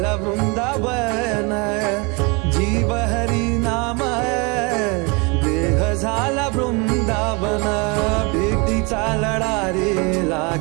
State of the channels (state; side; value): quieter; left; 29.8 dB